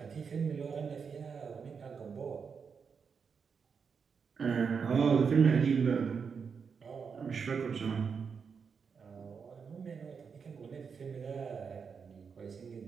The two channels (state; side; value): quieter; left; 6.0 dB